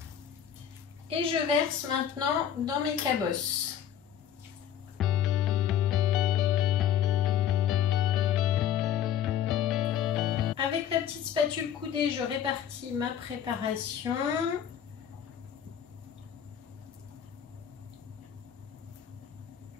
Et je verse maintenant dans mes cabosses. Avec la petite spatule coudée, je répartis ma préparation.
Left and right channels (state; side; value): quieter; right; 9.6 dB